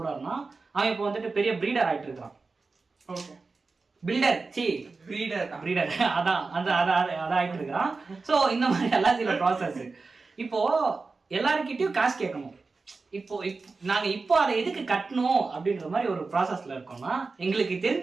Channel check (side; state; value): left; quieter; 4.0 dB